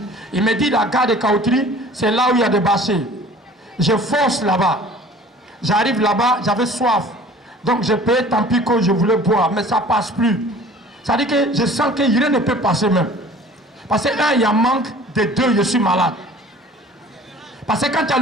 Il me dit la gare de Kaotri, c'est là où il y a des bâchers. Je fonce là-bas. J'arrive là-bas, j'avais soif. Donc je payais tant pis que je voulais boire, mais ça ne passe plus. Ça veut dire que je sens que rien ne peut passer même. Parce que il y a manque, de 2, je suis malade. Parce que quand tu as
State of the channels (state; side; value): normal; both; correlation 0.47